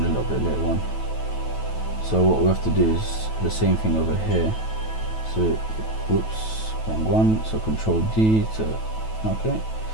a little bit later on. So what we have to do is the same thing over here. So whoops, wrong one. So Control D to, okay,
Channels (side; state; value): right; late; 9.2 ms